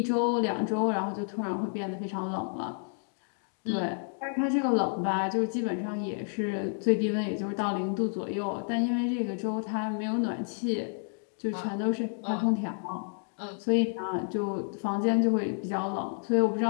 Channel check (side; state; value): right; silent; 58 dB below the other